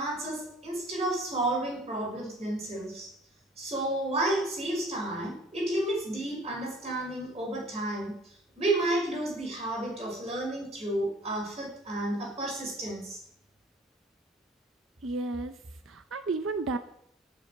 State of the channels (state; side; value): normal; both; correlation 0.50